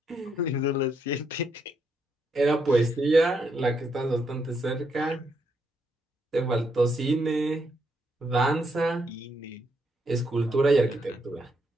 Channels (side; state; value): both; normal; correlation 0.77